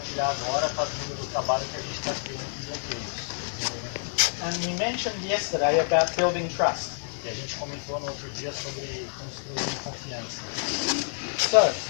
agora está vindo do trabalho que a gente está tendo com bloqueios. And we mentioned yesterday about building trust. E a gente comentou no outro dia sobre construir confiança. So,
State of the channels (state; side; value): silent; right; digital silence